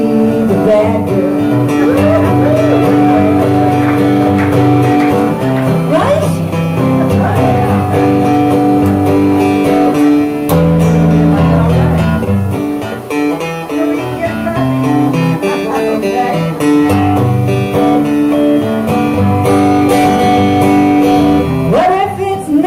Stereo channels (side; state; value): both; identical; correlation 1.00